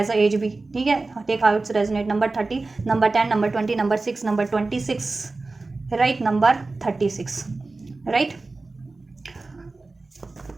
a age भी, ठीक है। Take how it's resonate, number 30, number 10, number 20, number 6, number 26, right, number 36, right.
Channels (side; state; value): left; quieter; 3.5 dB